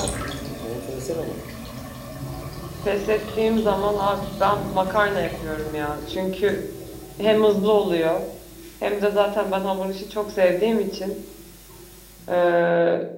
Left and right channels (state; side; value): identical; both; correlation 1.00